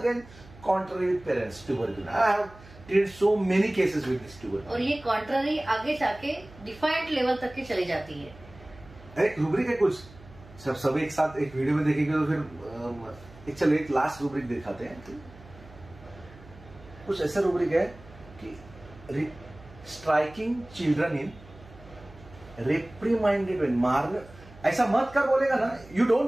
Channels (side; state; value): right; noise; hum, 21 dB below the sound